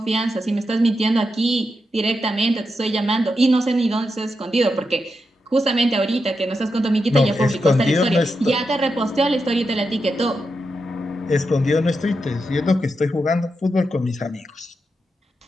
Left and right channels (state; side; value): normal; both; correlation 0.86